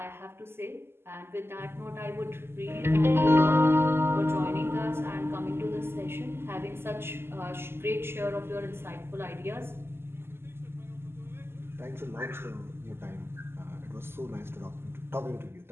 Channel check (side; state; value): left; late; 0.12 ms